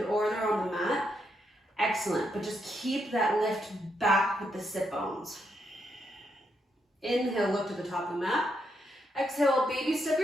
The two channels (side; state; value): both; normal; correlation 0.79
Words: or they're on the mat, excellent, but just keep that lift back with the sit bones. Inhale, look to the top of the mat. Exhale, baby step